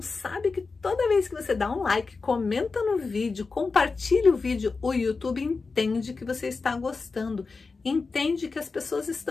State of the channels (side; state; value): right; quieter; 4.3 dB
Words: que toda vez que você dá um like, comenta no vídeo, compartilha o vídeo, o YouTube entende que você está gostando, entende que as pessoas